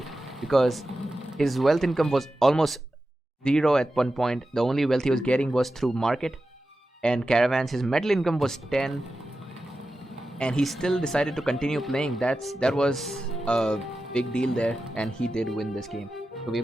because his wealth income was almost zero at one point. The only wealth he was getting was through market and caravans. His metal income was 10, and he still decided to continue playing. That was a big deal there, and he did win this game. So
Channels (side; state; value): both; normal; correlation 0.92